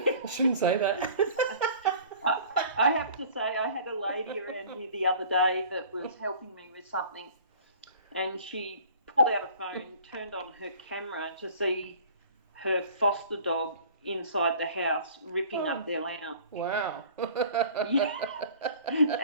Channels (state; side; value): inverted; both; correlation -0.47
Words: I shouldn't say that. I have to say, I had a lady around here the other day that was helping me with something, and she pulled out a phone, turned on her camera to see her foster dog inside the house ripping up their lounge. Wow. Yeah.